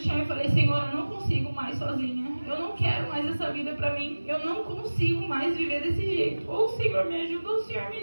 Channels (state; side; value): inverted; both; correlation -1.00